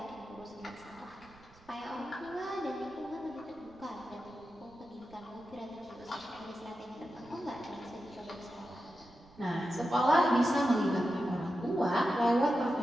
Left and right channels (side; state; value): right; noise; rumble, 25 dB below the sound